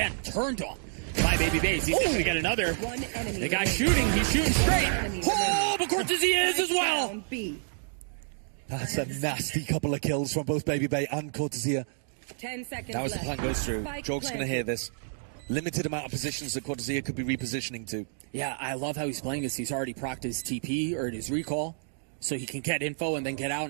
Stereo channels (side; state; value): left; silent; digital silence